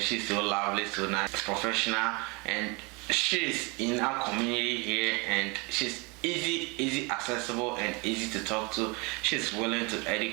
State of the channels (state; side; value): quieter; left; 28.9 dB